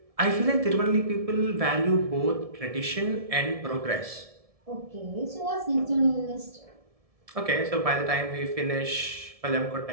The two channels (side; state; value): left; late; 1.7 ms